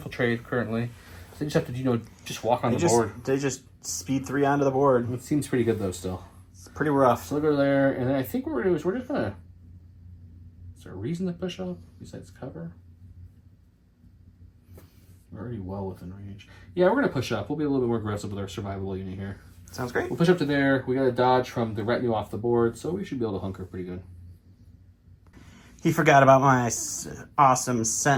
currently. So they just have to, just walk on the board. They just speed 3 onto the board. It seems pretty good though. Still, it's pretty rough. So we'll go there, and then I think what we're gonna do is we're just gonna. Is there a reason to push up besides cover? We're already well within range. Yeah, we're gonna push up. We'll be a little bit more aggressive with our survivable unit here. Sounds great. We'll push up to there. We got to dodge from the retinue off the board, so we should be able to hunker pretty good. He forgot about my awesome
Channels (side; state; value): both; identical; correlation 1.00